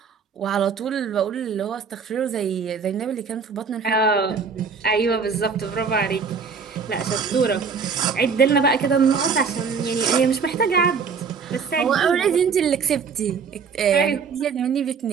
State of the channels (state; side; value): quieter; left; 5.7 dB